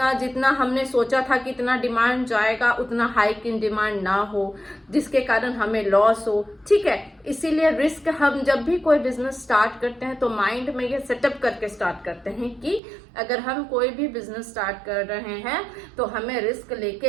जितना हमने सोचा था कि इतना डिमांड जाएगा उतना हाइक इन डिमांड ना हो, जिसके कारण हमें लॉस हो। ठीक है, इसीलिए रिस्क हम जब भी कोई बिजनेस स्टार्ट करते हैं तो माइंड में ये सेटअप करके स्टार्ट करते हैं कि अगर हम कोई भी बिजनेस स्टार्ट कर रहे हैं तो हमें रिस्क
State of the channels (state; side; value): drops out; left; at 12.8 s